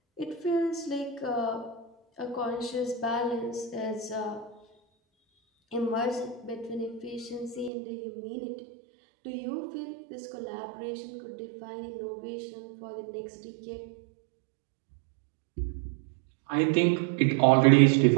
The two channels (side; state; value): left; drops out; at 7.7 s